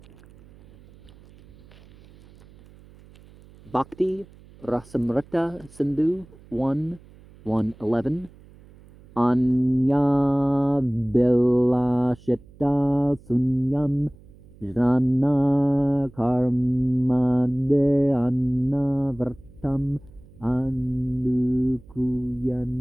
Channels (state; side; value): noise; right; hum, 24 dB below the sound